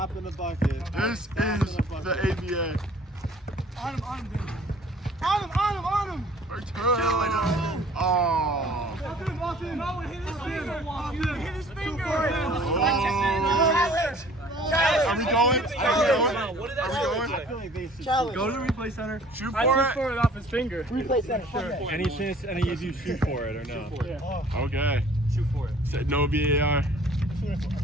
in the bucket. This is the ABA. On him, dude. On him. Return. Oh. Off him. No, hit his finger. Hit his finger. Are we going going? Are we going? I feel like they should Challenge. Go to the replay center. Shoot I for took it. for it off his finger. Replay center. Okay. Any chance any of you shoot for it or no? Okay. Shoot for it. Said no VAR.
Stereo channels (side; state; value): both; normal; correlation 0.52